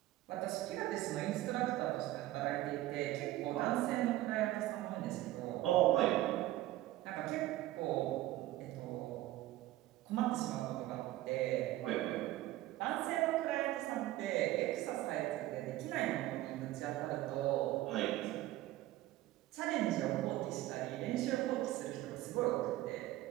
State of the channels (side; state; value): left; quieter; 15.8 dB